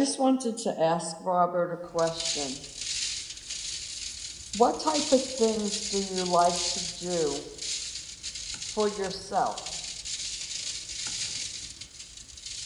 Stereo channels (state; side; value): identical; both; correlation 1.00